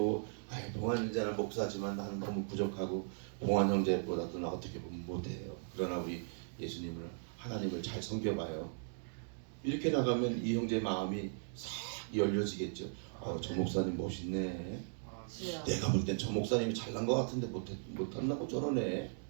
봉환 형제는 목사지만 나는 너무 부족하고 봉환 형제보다도 나 어떻게 보면 못해요. 그러나 우리 예수님을 하나님을 잘 섬겨봐요. 이렇게 나가면 이 형제 마음이 싹 열려지겠죠. 저 목사님 멋있네. 내가 볼 땐 저 목사님이 잘난 것 같은데 못한다고 저러네.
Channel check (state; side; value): silent; left; digital silence